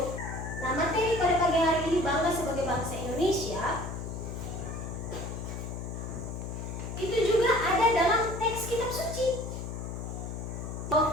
Nah, materi pada pagi hari ini bangga sebagai bangsa Indonesia itu juga ada dalam teks kitab suci.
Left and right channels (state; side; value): noise; left; hum, 6 dB below the sound